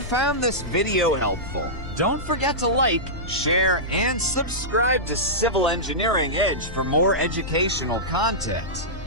this video helpful, don't forget to like, share, and subscribe to Civil Engineering Edge for more educational content.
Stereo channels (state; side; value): noise; left; rumble, 12 dB below the sound